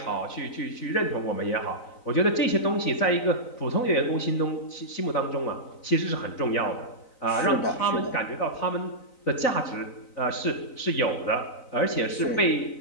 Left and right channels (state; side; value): late; right; 4.0 ms